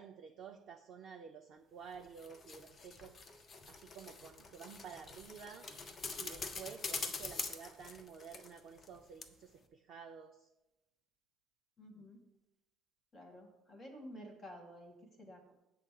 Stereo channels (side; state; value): both; normal; correlation 0.68